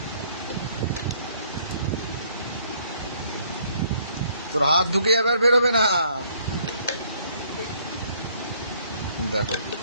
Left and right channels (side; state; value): both; inverted; correlation -0.64